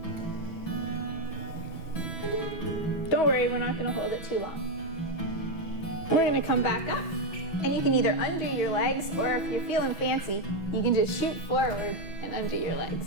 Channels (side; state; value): right; late; 6.1 ms